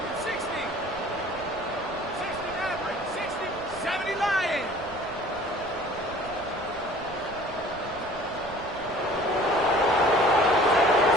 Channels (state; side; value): noise; right; rumble, 19 dB below the sound